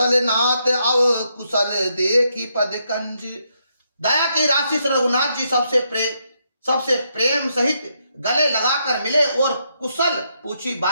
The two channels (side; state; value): both; inverted; correlation -0.78